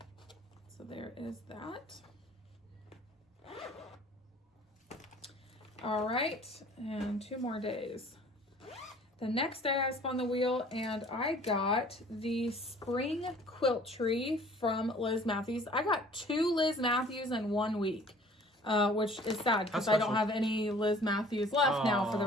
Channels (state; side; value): normal; both; correlation 0.51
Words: So there is that. All right, and 2 more days. The next day I spun the wheel and I got the spring quilt tree from Liz Matthews. I got 2 Liz Matthews in 1 week, which is sad because I don't have any Liz Matthews left now for the